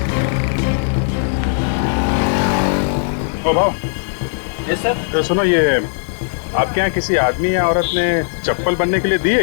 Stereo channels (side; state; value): right; silent; digital silence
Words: ओ भाव। Yes sir. तो सुनो, ये आपके यहाँ किसी आदमी या औरत ने चप्पल बनने के लिए दी